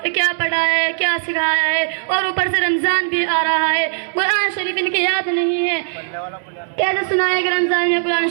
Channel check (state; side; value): silent; left; digital silence